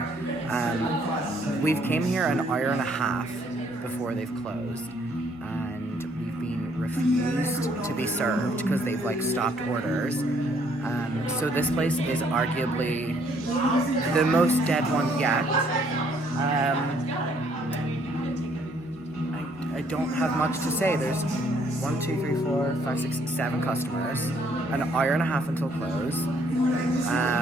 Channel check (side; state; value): both; normal; correlation 0.66